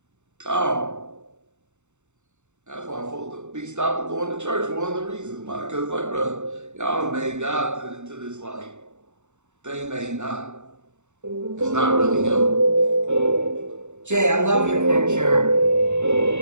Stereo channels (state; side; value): late; left; 0.84 ms